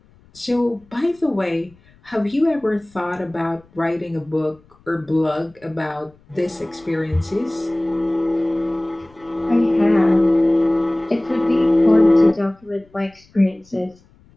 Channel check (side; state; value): left; noise; rumble, 30 dB below the sound